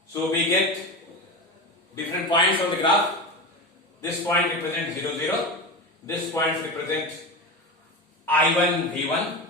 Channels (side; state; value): both; normal; correlation 0.23